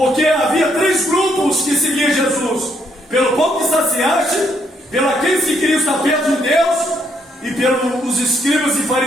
havia 3 grupos que seguiam Jesus: pelo pão que saciaste, pelo aqueles que queriam estar perto de Deus, e pelos escribas e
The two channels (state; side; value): normal; both; correlation 0.72